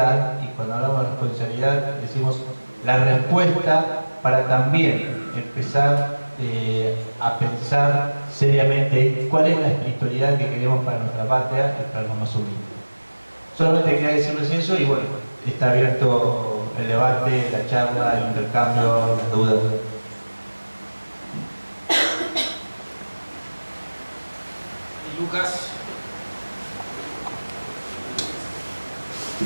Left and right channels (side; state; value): both; inverted; correlation -1.00